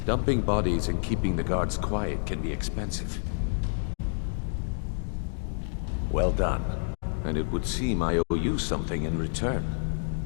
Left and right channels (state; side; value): silent; right; digital silence